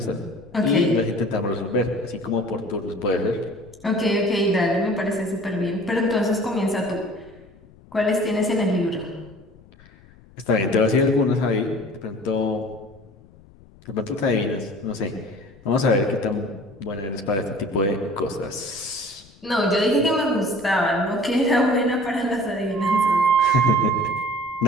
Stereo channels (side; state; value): left; noise; rumble, 25 dB below the sound